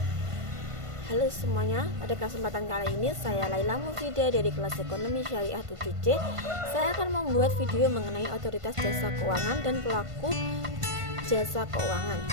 Halo semuanya, pada kesempatan kali ini saya Laila Mufida dari kelas Ekonomi Syariah 7C. Saya akan membuat video mengenai otoritas jasa keuangan dan pelaku jasa keuangan.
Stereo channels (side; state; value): left; late; 1.5 ms